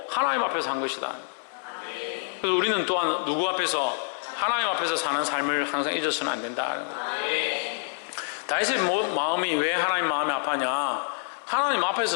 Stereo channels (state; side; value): silent; right; 60 dB below the other